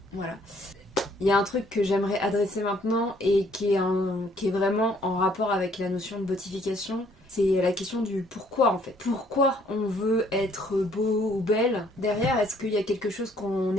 Voilà. Il y a un truc que j'aimerais adresser maintenant et qui est vraiment en rapport avec la notion de beautification. C'est la question du pourquoi en fait. Pourquoi on veut être beau ou belle? Derrière, est-ce qu'il y a quelque chose qu'on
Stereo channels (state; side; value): normal; both; correlation 0.63